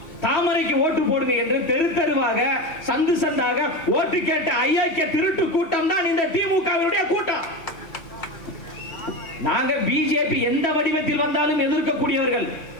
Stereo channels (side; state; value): right; late; 2.7 ms